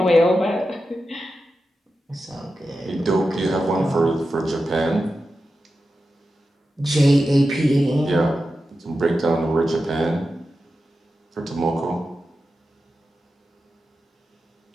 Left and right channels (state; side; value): normal; both; correlation 0.91